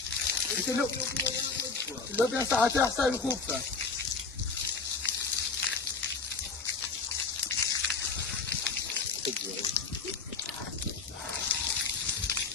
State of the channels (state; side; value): quieter; right; 4.6 dB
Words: لو بين ساعتين حساب الخوفة